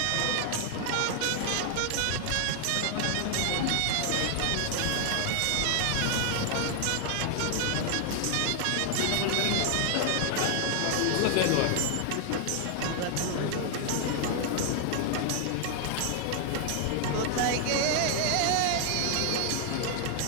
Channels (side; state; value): both; different; correlation 0.00